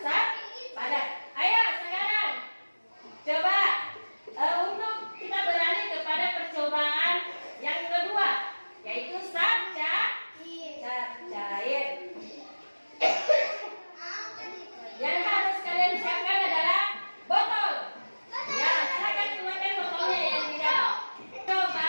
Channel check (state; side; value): inverted; both; correlation -1.00